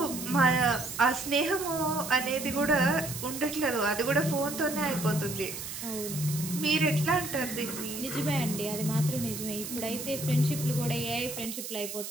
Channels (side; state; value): right; noise; hiss, 8 dB below the sound